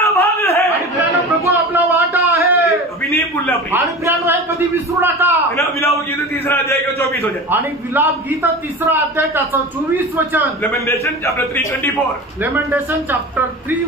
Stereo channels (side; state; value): both; normal; correlation 0.32